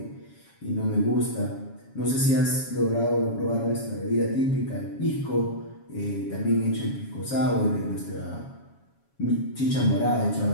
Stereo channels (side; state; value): right; late; 7.2 ms